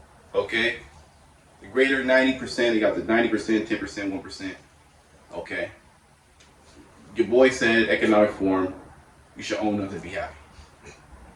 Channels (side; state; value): both; identical; correlation 1.00